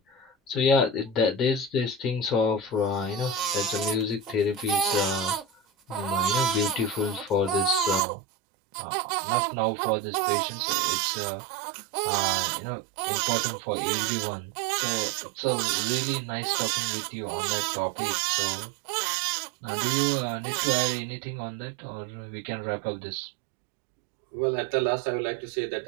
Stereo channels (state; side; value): drops out; left; at 8.0 s